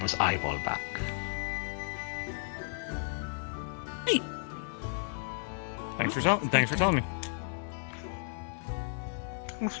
eyeball back. Thanks for telling me.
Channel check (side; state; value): right; silent; 55 dB below the other